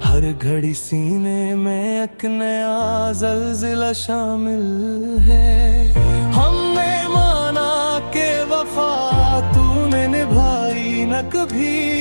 हर घड़ी सीने में एक नया ज़ल्ज़ला शामिल है। हमने माना के वफा तूने निभाई न कभी,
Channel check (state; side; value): inverted; both; correlation -1.00